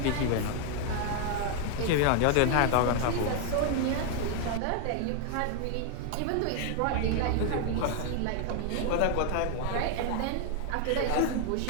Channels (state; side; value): different; both; correlation 0.00